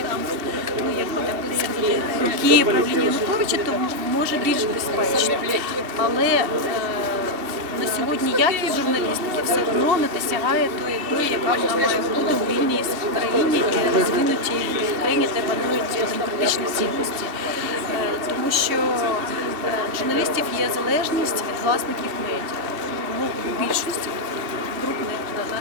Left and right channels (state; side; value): late; left; 2.6 ms